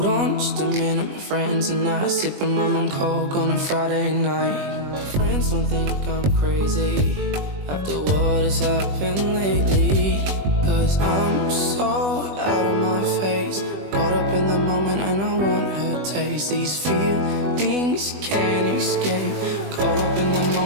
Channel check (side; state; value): left; late; 20 ms